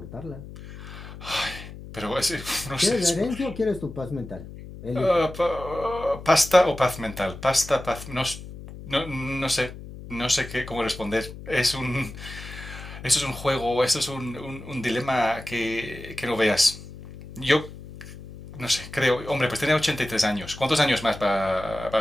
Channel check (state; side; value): noise; left; hum, 14 dB below the sound